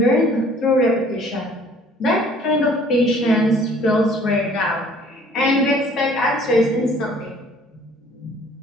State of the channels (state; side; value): normal; both; correlation 0.55